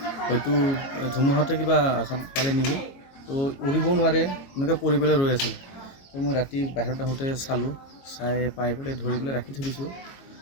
হয়তো ধুমুহাতে কিবা আঘাত পালে নেকি তো উৰিব নোৱাৰে এনেকৈ পৰি পেলাই ৰৈ আছিল তো মই ৰাতি বাহিৰত আহোঁতে চালোঁ চাই পাই পেলাই ধৰি পেলাই ৰাখি থৈ দিছোঁ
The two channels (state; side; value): late; right; 22 ms